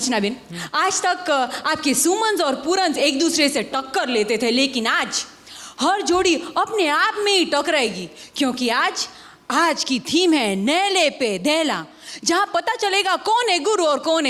बेन, आज तक आपके सुमन और पूरन एक दूसरे से टक्कर लेते थे, लेकिन आज हर जोड़ी अपने आप में ही टकराएगी, क्योंकि आज की थीम है नेले पे देला, जहां पता चलेगा कौन है गुरु और कौन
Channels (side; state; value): both; identical; correlation 1.00